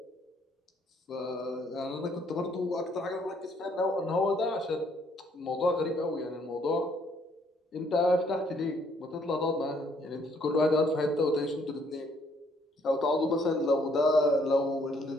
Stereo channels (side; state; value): both; normal; correlation 0.67